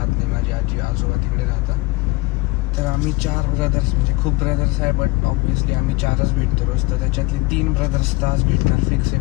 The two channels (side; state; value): right; quieter; 21.9 dB